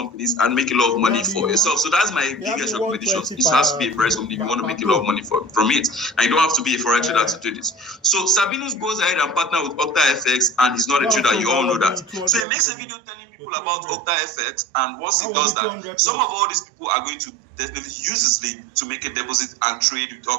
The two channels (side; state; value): left; drops out; at 12.5 s